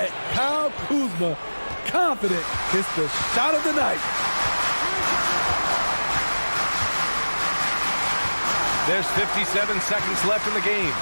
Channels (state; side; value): inverted; both; correlation -1.00